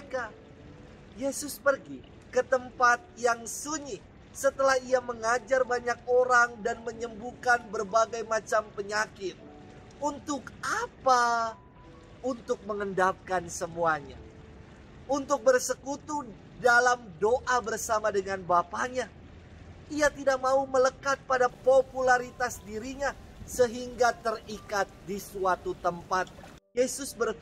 Yesus pergi ke tempat yang sunyi setelah ia mengajar banyak orang dan menyembuhkan berbagai macam penyakit. Untuk apa? Untuk mengendapkan semuanya. Untuk bersekutu dalam doa bersama dengan Bapanya. Ia tidak mau melekat pada popularitas dirinya sehingga terikat di suatu tempat. Yesus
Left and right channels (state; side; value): identical; both; correlation 1.00